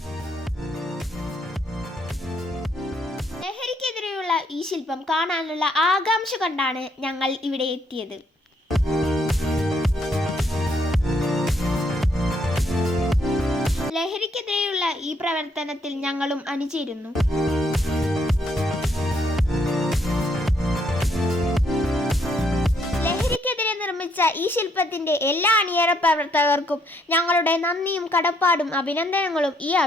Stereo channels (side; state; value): both; normal; correlation 0.71